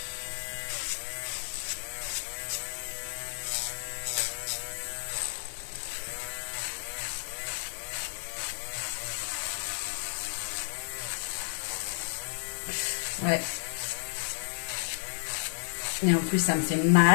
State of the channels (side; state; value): right; silent; digital silence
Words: Ouais. Et en plus, ça me fait